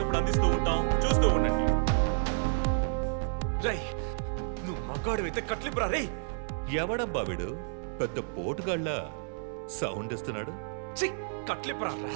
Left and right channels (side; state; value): left; silent; 58 dB below the other